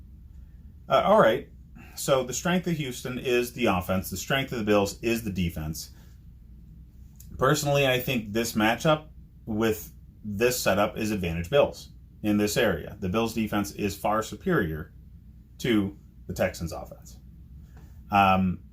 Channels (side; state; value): both; identical; correlation 1.00